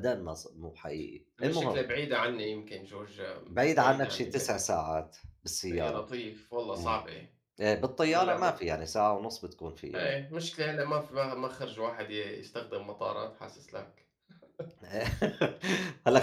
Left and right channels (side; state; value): both; identical; correlation 1.00